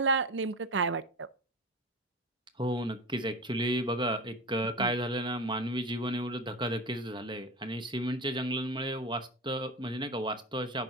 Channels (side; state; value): both; normal; correlation 0.26